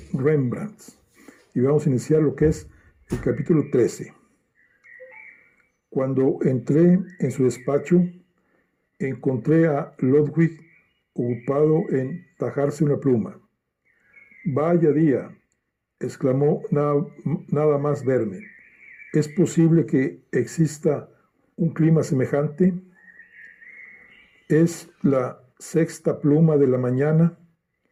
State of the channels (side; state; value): both; identical; correlation 1.00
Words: Rembrandt. Y vamos a iniciar lo que es el capítulo 13. Cuando entré en su despacho, encontré a Ludwig ocupado en tajarse una pluma. «Vaya día», exclamó nada más verme. «¿Es posible que exista un clima semejante? Es la sexta pluma de la mañana,